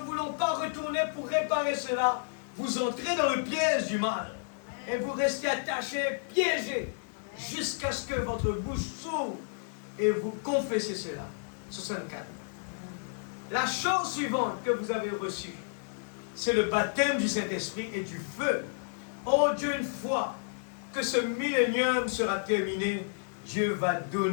voulons pas retourner pour réparer cela, vous entrez dans le piège du mal. Et vous restez attaché, piégé, jusqu'à ce que votre bouche s'ouvre et vous confessez cela. 64. La chose suivante que vous avez reçue, c'est le baptême du Saint-Esprit et du feu. Oh Dieu, une fois que ce millénium sera terminé, Dieu va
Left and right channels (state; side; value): silent; right; digital silence